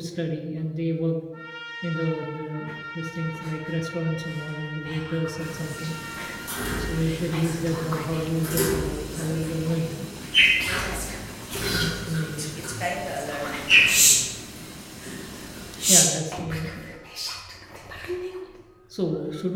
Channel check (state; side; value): identical; both; correlation 1.00